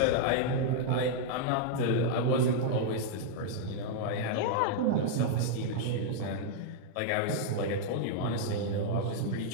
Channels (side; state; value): both; different; correlation -0.01